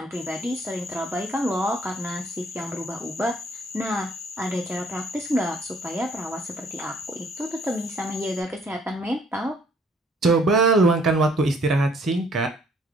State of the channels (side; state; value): both; normal; correlation 0.62